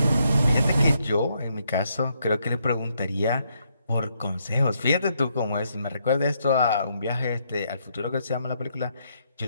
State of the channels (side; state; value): both; inverted; correlation -0.76